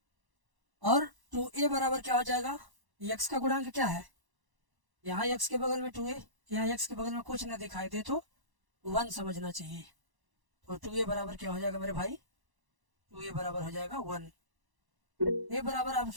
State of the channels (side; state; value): left; late; 1.0 ms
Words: और 2a बराबर क्या हो जाएगा, x का गुणांक क्या है, यहाँ x के बगल में 2a, यहाँ x के बगल में कुछ ना दिखाई दे तो 1 समझना चाहिए। तो 2a बराबर क्या हो जाएगा मेरे भाई, 2a बराबर हो जाएगा 1। a बराबर आप